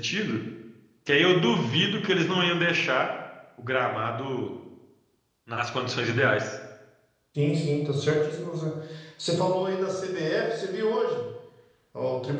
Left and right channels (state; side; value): identical; both; correlation 1.00